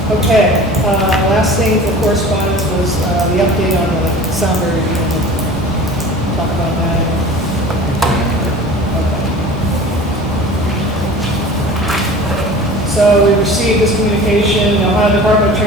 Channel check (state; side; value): normal; both; correlation 0.40